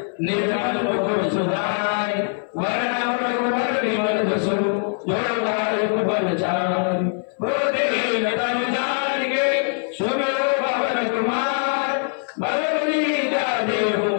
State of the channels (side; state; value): right; silent; 60 dB below the other